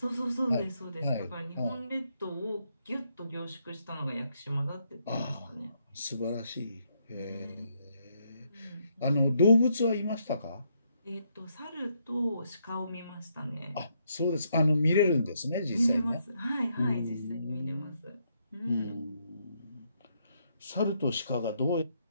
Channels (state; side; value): inverted; both; correlation -0.76